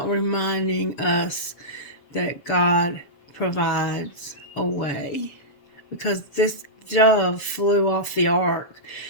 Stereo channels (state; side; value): late; right; 7.4 ms